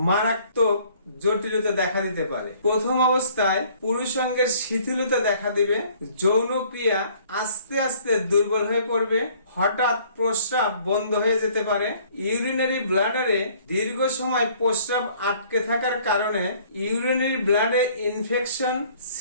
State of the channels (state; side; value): inverted; both; correlation -0.57